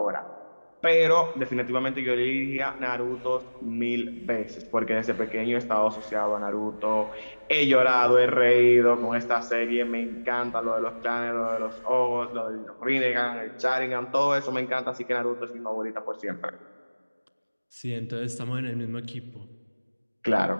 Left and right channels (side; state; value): both; inverted; correlation -1.00